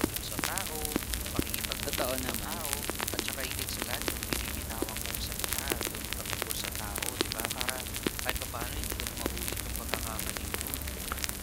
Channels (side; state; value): both; identical; correlation 1.00